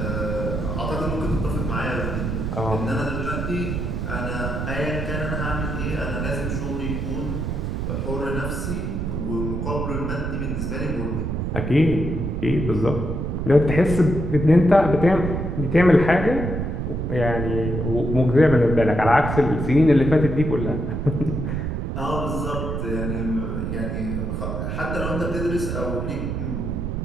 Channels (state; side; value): noise; right; rumble, 2 dB below the sound